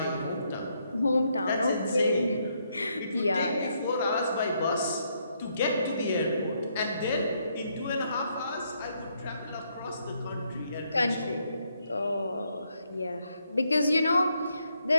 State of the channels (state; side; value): inverted; both; correlation -0.75